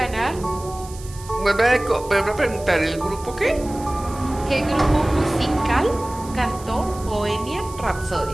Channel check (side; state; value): right; noise; hiss, 18 dB below the sound